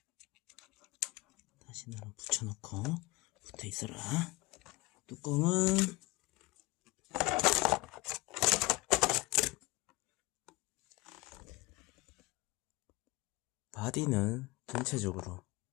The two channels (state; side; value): quieter; right; 21.9 dB